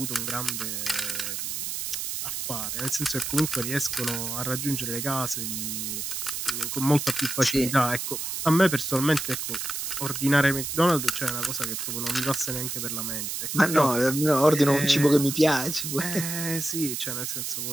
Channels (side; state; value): right; noise; hiss, 4 dB below the sound